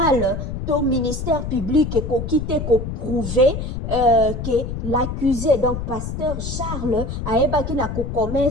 to ministère public ekoki te ko prouver que l'accusé, donc pasteur Charles, ayebaki na ko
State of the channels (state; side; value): noise; left; rumble, 5 dB below the sound